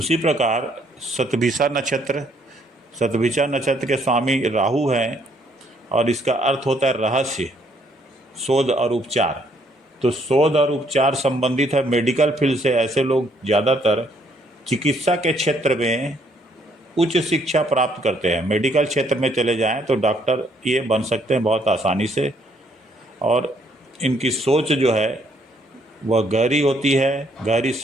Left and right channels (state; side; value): normal; both; correlation 0.68